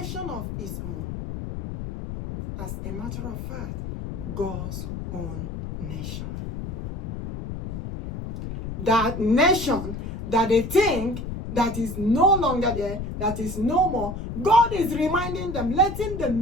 of its own. As a matter of fact, God's own nation. That nation that they think that is no longer there, that is no more, God is reminding them, letting them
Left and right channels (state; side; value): noise; left; rumble, 6 dB below the sound